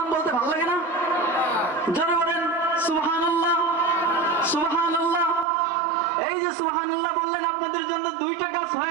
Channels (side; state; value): left; drops out; at 5.5 s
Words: বলতে ভালো লাগে না? জোরে বলেন সুবহানাল্লাহ, সুবহানাল্লাহ। এই যে সুবহানাল্লাহ বললেন, আপনাদের জন্য 2টা গাছ